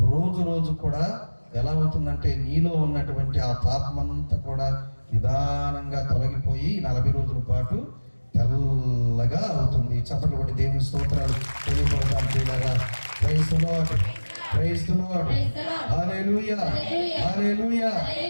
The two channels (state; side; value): inverted; both; correlation -1.00